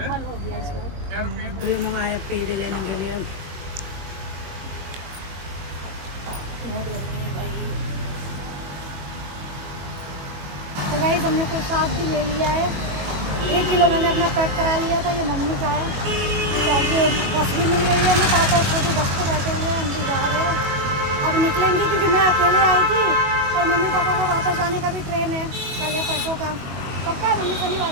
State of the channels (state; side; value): late; left; 21 ms